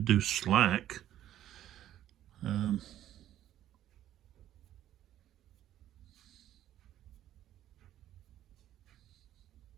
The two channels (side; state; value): left; quieter; 12.2 dB